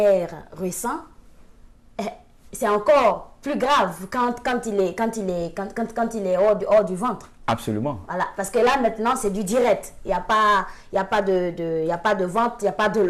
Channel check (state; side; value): identical; both; correlation 1.00